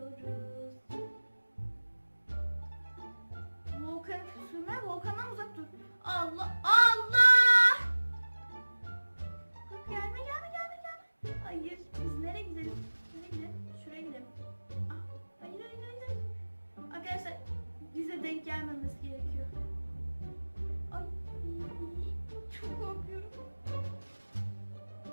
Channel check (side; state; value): both; inverted; correlation -1.00